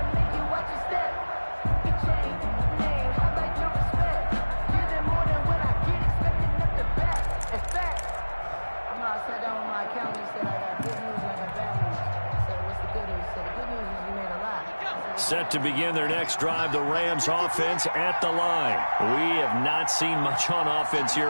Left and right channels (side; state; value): both; inverted; correlation -1.00